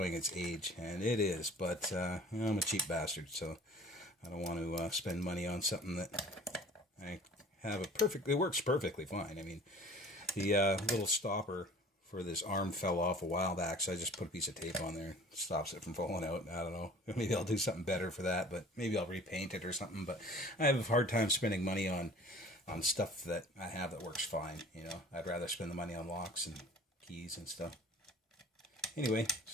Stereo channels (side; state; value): both; normal; correlation 0.46